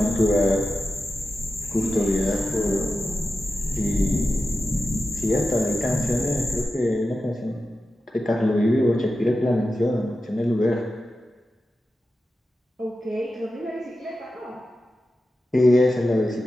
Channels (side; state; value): both; normal; correlation 0.92